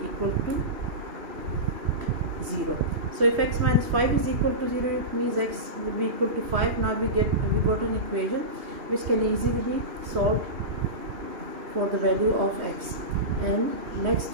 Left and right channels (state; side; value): late; left; 2.7 ms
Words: to 0. So if x minus 5 is equal to 0, it means x will be equal to 5. Now we got an equation which can easily be solved for the value of x. And